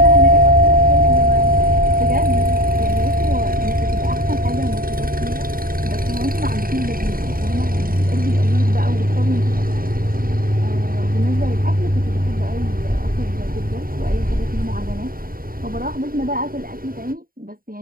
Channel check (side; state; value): left; late; 0.42 ms